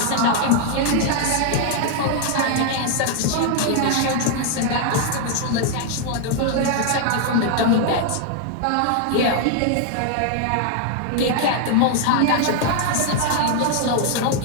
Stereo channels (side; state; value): both; different; correlation 0.00